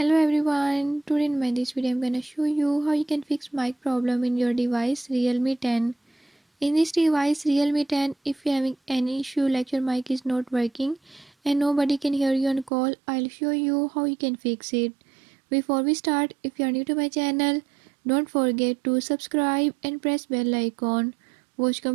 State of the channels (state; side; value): drops out; left; at 12.7 s